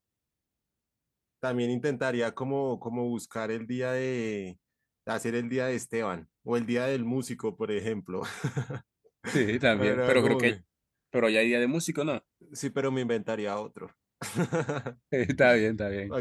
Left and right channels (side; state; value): both; identical; correlation 1.00